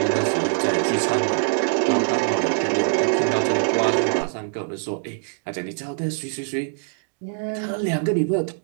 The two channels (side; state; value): left; silent; digital silence